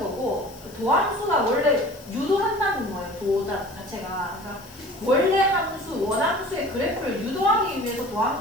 도함수가 원래 유도한다는 거예요. 도자 자체가. 그러니까 원래 함수, 원함수의 그래프를 유도하기 위해서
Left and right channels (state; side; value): noise; left; hiss, 21 dB below the sound